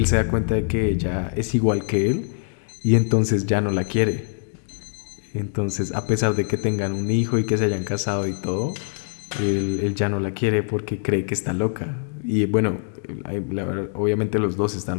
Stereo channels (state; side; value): silent; right; 60 dB below the other